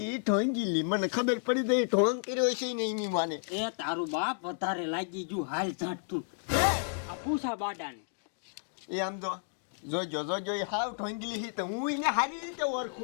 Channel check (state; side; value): silent; right; digital silence